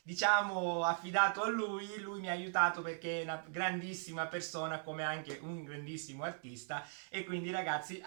diciamo, affidato a lui. Lui mi ha aiutato perché è una grandissima persona, come anche un grandissimo artista. E quindi, ragazzi,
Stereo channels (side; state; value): left; silent; digital silence